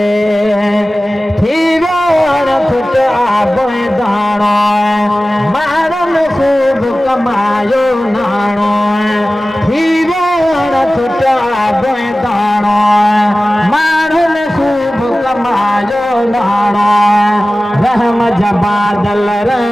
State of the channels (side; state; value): both; normal; correlation 0.96